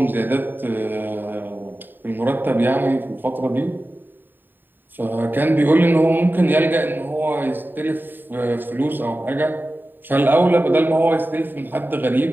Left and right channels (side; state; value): left; late; 0.092 ms